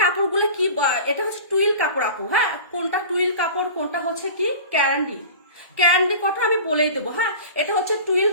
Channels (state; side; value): inverted; both; correlation -0.37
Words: কাপড়গুলো কি, এটা হচ্ছে টুইল কাপড় আপু। হ্যাঁ কোনটা টুইল কাপড় কোনটা হচ্ছে কি ক্যান্ডি কথা আমি বলেই দেবো। হ্যাঁ এটা হচ্ছে টুইল